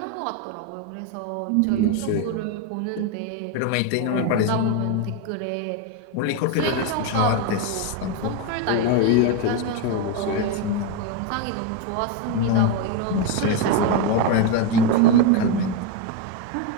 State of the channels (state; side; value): different; both; correlation 0.02